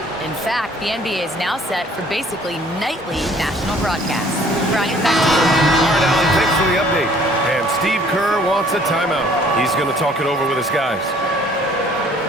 In fact, the NBA is now set for basically nightly national broadcasts. Brian, back to you. All right, Allie, thanks for the update. And Steve Kerr wants a timeout. He's going to talk it over with his guys.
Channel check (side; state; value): both; normal; correlation 0.57